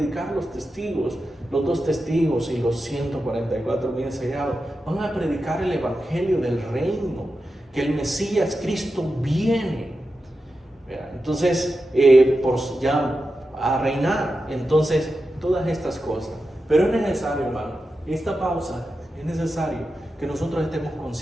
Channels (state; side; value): normal; both; correlation 0.90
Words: los testigos? Los dos testigos y los 144,000 sellados van a predicar el evangelio del reino, que el Mesías Cristo viene. Entonces, ya a reinar. Entonces, todas estas cosas. Pero es necesario, hermano, esta pausa, es necesario que nosotros estemos